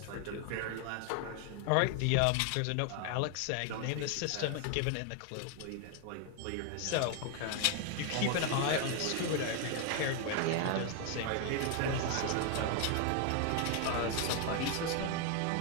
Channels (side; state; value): both; different; correlation 0.01